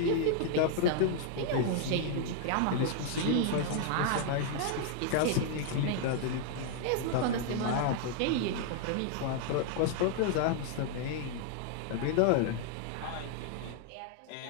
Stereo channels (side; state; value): both; different; correlation 0.00